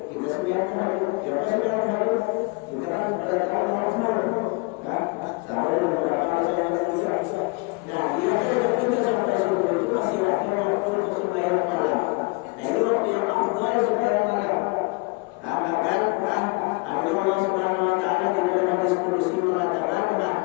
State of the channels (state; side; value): quieter; right; 29.2 dB